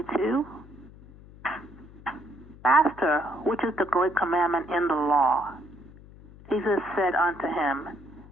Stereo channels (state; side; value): noise; left; hum, 20 dB below the sound